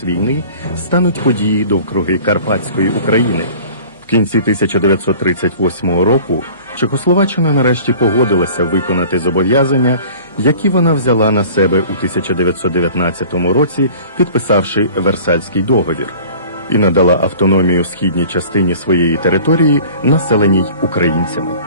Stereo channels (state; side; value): inverted; both; correlation -0.46